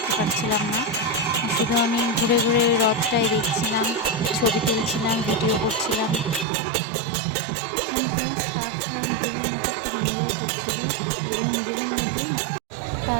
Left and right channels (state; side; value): drops out; left; at 6.5 s